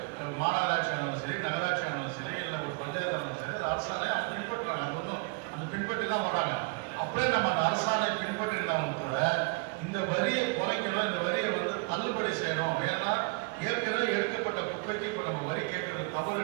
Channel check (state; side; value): quieter; left; 29.7 dB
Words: மாநகராட்சி ஆனாலும் சரி, நகராட்சி ஆனாலும் சரி, இல்லை ஒரு பஞ்சாயத்து ஆனாலும் சரி, அது அரசாணை அவங்க பின்பற்றுறாங்க. அது ஒன்றும் அந்த பின்பற்றி தான் வராங்க. அப்படியே நம்ம அந்த அரசாணை பின்பற்றிருந்தாலும் கூட இந்த வரியை குறைக்கணும், இந்த வரியை வந்து தள்ளுபடி செய்யணும். ஏன்னா ஏற்கனவே எடுக்கப்பட்ட குப்பைக்கு இப்போ நம்ம வரி கேட்கறது